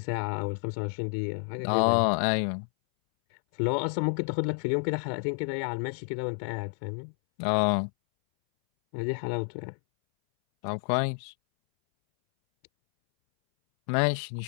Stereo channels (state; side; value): silent; right; 58 dB below the other